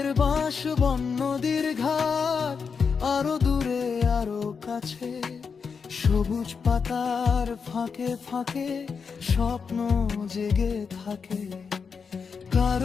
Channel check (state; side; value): quieter; right; 5.7 dB